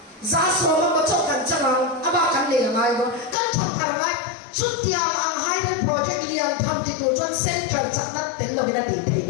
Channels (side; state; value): right; drops out; at 3.4 s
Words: giá số mà có chỗ cắn chân ông aba cắn liền ngay đó cắn thằng thằng ngay chút tiền ang hai bên project liền tham đi tu cho central chắc nát tên lo bên đó đi